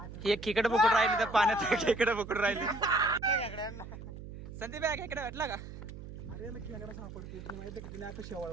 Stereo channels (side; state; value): right; noise; hum, 12 dB below the sound